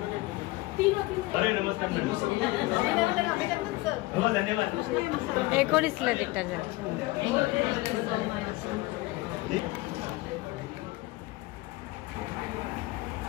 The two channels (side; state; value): right; quieter; 20.4 dB